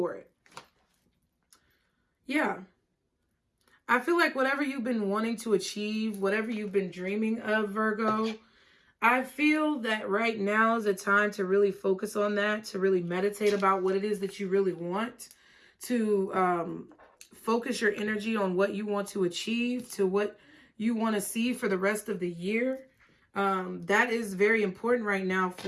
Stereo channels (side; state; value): both; identical; correlation 1.00